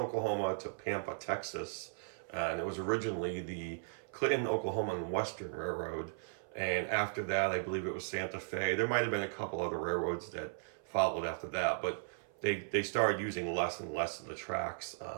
to Pampa, Texas. And it was originally the Clinton, Oklahoma and Western Railroad. And after that, I believe it was Santa Fe. There might have been a couple other railroads that followed after that, but they started using less and less of the tracks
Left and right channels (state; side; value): silent; left; 53 dB below the other